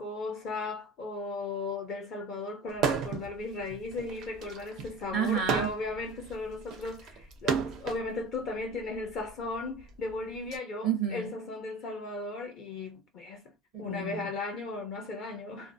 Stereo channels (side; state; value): both; normal; correlation 0.37